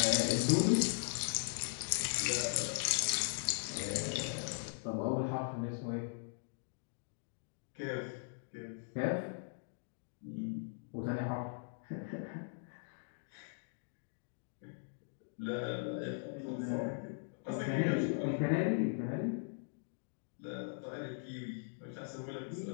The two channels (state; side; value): silent; right; digital silence